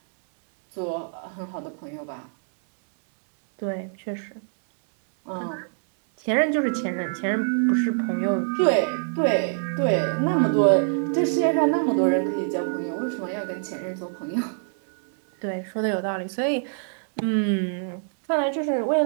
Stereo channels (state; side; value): silent; left; digital silence